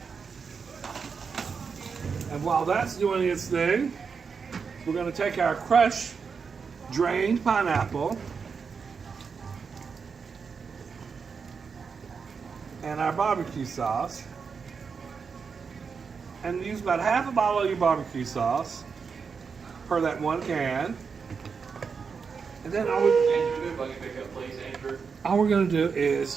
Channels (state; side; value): quieter; left; 5.7 dB